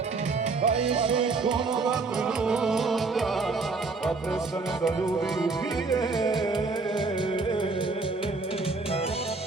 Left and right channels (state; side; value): quieter; left; 4.0 dB